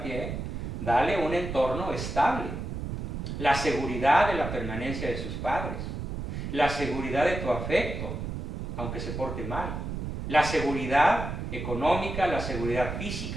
dale un entorno estable, la seguridad de la permanencia de sus padres, la seguridad de tu afecto, aunque se porte mal, la seguridad económica, la seguridad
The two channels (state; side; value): noise; right; rumble, 5 dB below the sound